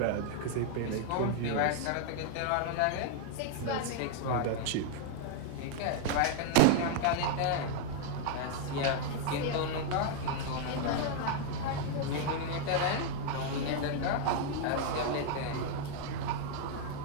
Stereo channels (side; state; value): both; different; correlation 0.00